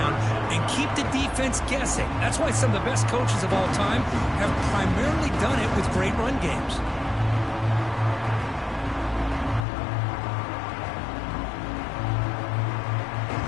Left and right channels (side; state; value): right; drops out; at 9.7 s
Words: and keep the defense guessing. That's why some of the best coaches of all time have primarily done it with great run games.